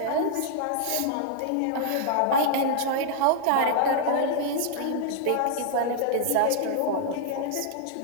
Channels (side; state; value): both; different; correlation -0.01